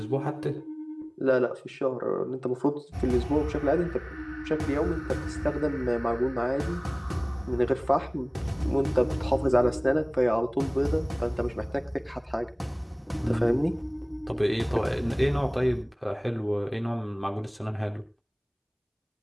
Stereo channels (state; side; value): identical; both; correlation 1.00